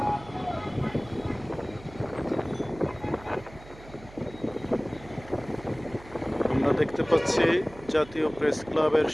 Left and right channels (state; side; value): noise; right; hum, 19 dB below the sound